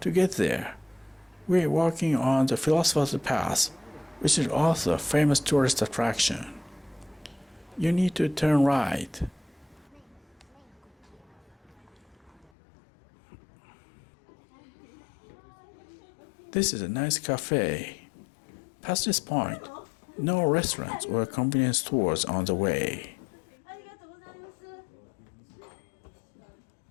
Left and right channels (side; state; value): right; drops out; at 12.5 s